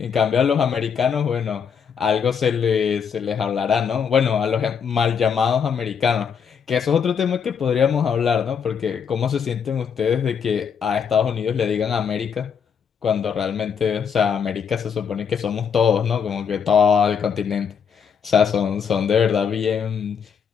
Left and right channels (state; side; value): quieter; right; 7.0 dB